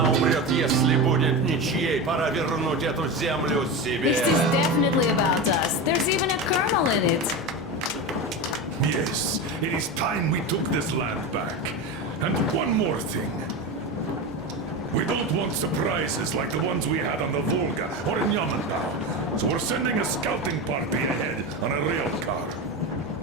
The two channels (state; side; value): normal; both; correlation 0.21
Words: умрет, если будет ничьей, пора вернуть эту землю себе. This is definitely about us. There's even a colonel in it. Yes, it is time we took this land back. And one more thing. We don't want surprises like the ones we had on the Volga or in Yamantau. So we're sending a scouting party ahead on a rail car.